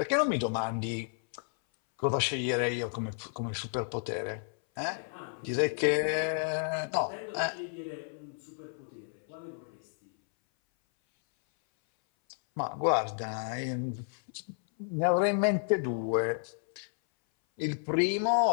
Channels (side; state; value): right; silent; 57 dB below the other